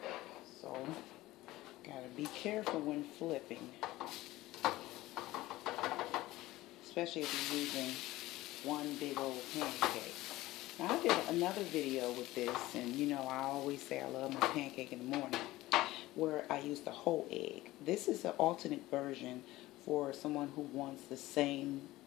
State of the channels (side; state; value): right; quieter; 17.6 dB